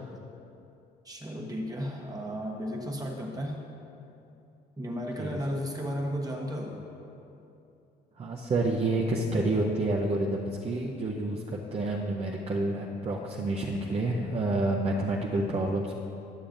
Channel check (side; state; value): both; normal; correlation 0.67